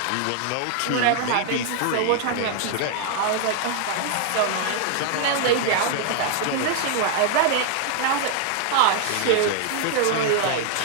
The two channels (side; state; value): both; different; correlation 0.00